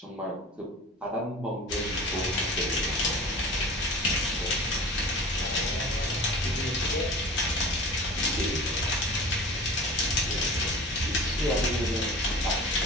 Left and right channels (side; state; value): both; normal; correlation 0.39